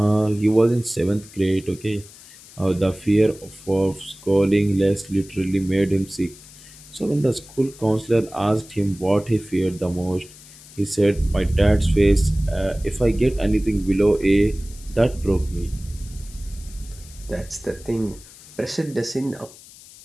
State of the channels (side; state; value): left; noise; hiss, 20 dB below the sound